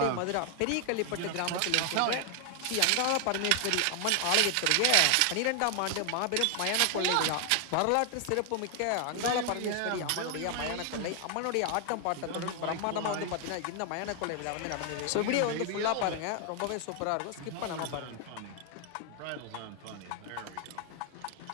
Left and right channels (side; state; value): both; different; correlation 0.00